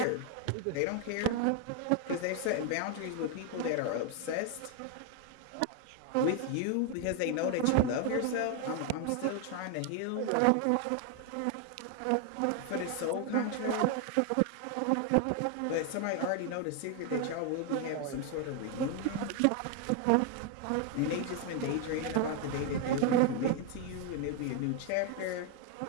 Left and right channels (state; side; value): different; both; correlation 0.01